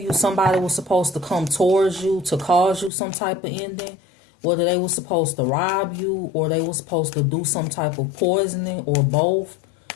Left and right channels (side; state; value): right; drops out; at 2.9 s